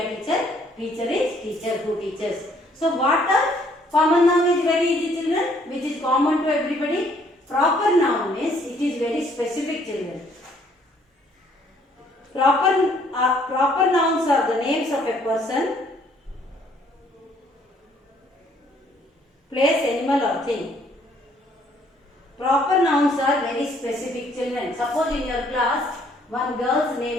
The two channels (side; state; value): both; normal; correlation 0.64